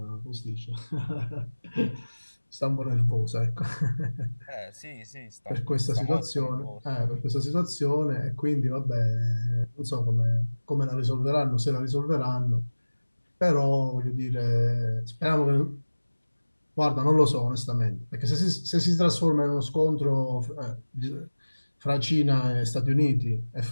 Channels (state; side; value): inverted; both; correlation -1.00